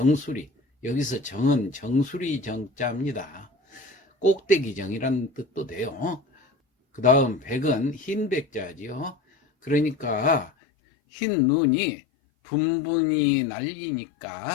여기서 정은 정수리 정자입니다. 꼭대기 정이라는 뜻도 돼요. 그 다음 백은 흰백자지요. 그러니까 흰 눈이 분분히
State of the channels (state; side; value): drops out; right; at 10.5 s